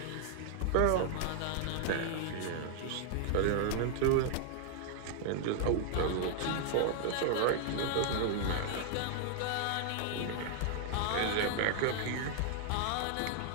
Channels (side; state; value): both; different; correlation 0.00